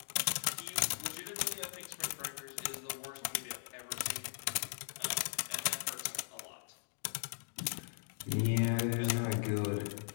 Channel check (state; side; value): silent; right; digital silence